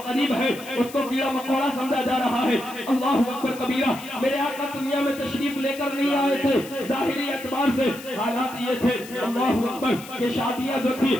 قریب ہے اس کو کیڑا مکوڑا سمجھا جا رہا ہے۔ اللہ اکبر کبیرہ، میرے آقا دنیا میں تشریف لے کر نہیں آئے تھے، ظاہری اعتبار سے حالات یہ تھے اللہ اکبر کہ شادیاں جو تھی،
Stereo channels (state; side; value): noise; left; hiss, 17 dB below the sound